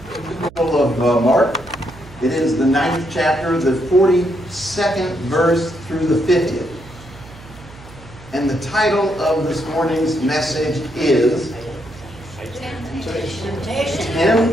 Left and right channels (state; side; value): noise; right; hum, 19 dB below the sound